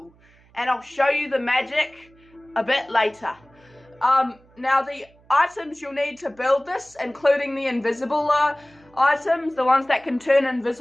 and I'll show you the magic a bit later. Now the items you'll need to build this, including the invisible items, the ones that can turn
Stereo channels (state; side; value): noise; right; hum, 30 dB below the sound